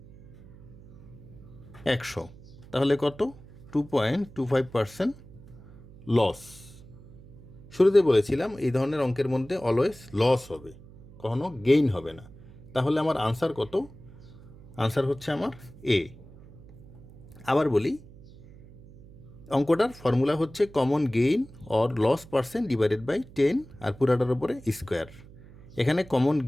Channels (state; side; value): noise; right; hum, 20 dB below the sound